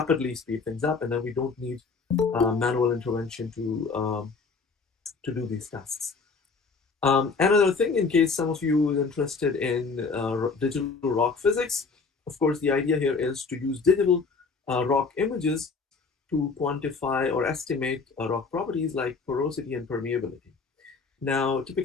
speed things up, and then we don't need manual intervention to do these tasks. Another thing, in case some of you are interested in digital rock physics, of course, the idea here is to use digital rock images to quantify or estimate rock properties like porosity and permeability. Now,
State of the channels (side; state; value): right; quieter; 4.6 dB